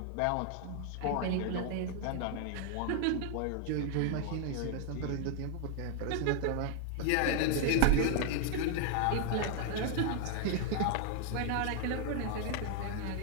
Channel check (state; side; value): different; both; correlation 0.00